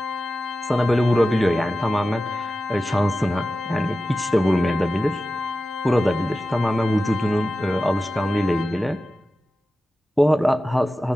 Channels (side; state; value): both; normal; correlation 0.94